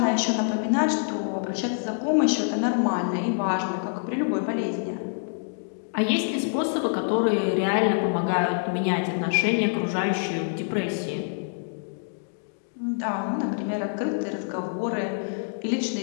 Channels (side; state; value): right; silent; digital silence